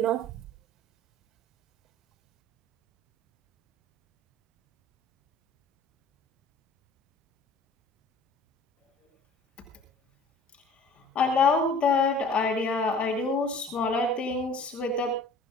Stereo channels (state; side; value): normal; both; correlation 0.49